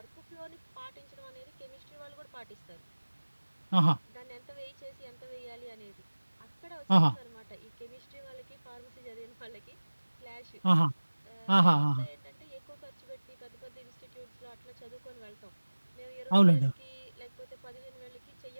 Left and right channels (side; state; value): both; inverted; correlation -1.00